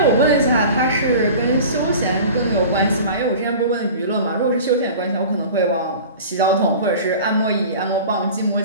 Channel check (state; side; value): inverted; both; correlation -0.39